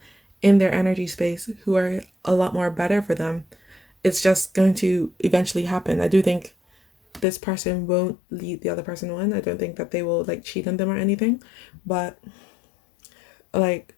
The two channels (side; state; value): right; drops out; at 7.2 s